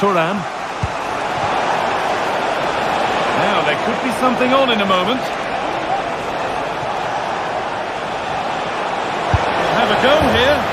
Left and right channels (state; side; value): identical; both; correlation 1.00